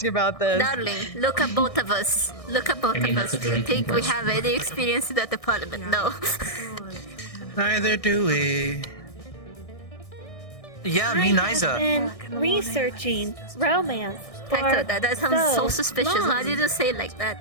about this. Darling, look at both of us. Look at both I mean, of us. that's a Do you drinking think we question. have any experience in that department? No. Neither do we. Yeah, I me have neither. been researching romance for Hector, that sounds so so suspicious. long. Why did you say it like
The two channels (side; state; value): right; late; 1.6 ms